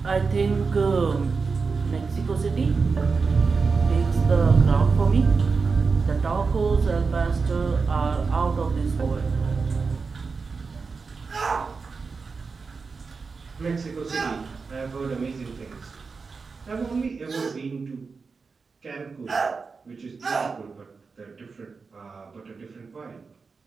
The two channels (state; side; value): quieter; left; 4.7 dB